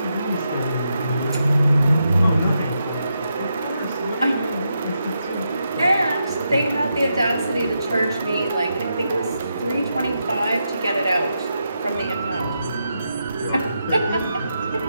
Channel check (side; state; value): both; inverted; correlation -0.84